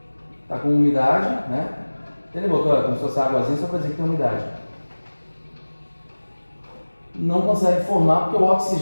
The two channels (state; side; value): inverted; both; correlation -1.00